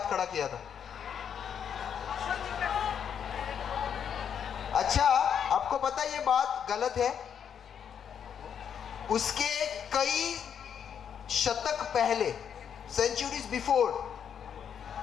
खड़ा किया था। अच्छा, आपको पता है ये बात गलत है? उसके कई शतक पहले, सेंचुरीज बिफोर,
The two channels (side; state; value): right; quieter; 8.1 dB